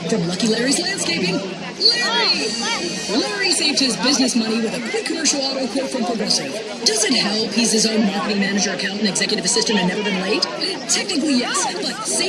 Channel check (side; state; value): both; identical; correlation 1.00